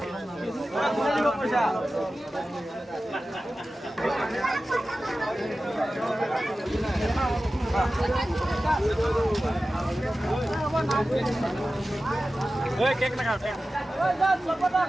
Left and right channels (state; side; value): normal; both; correlation 0.95